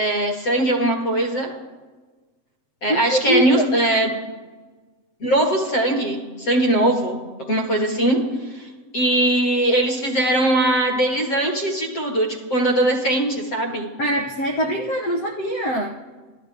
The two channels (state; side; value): late; right; 7.8 ms